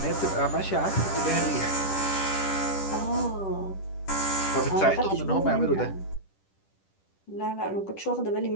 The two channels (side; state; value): right; late; 10 ms